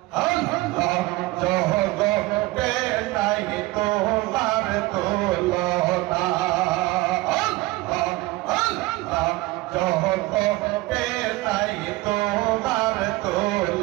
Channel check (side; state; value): left; quieter; 20.3 dB